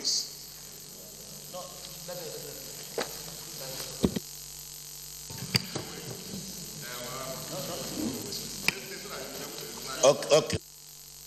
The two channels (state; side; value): identical; both; correlation 1.00